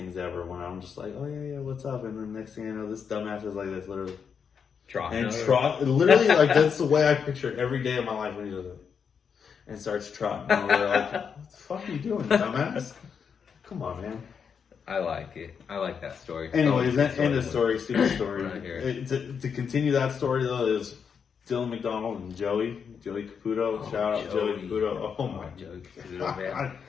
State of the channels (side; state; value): right; quieter; 6.7 dB